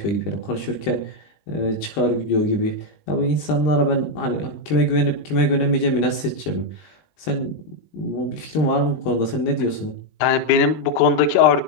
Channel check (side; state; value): right; late; 20 ms